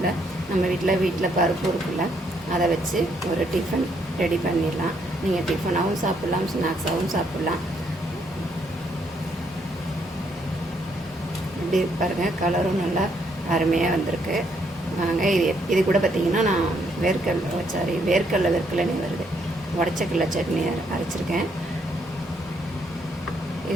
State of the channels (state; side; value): normal; both; correlation 0.72